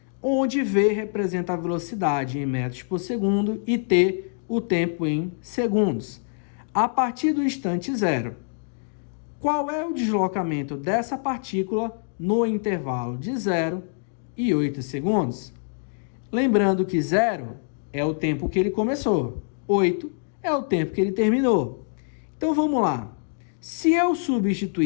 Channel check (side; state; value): right; silent; digital silence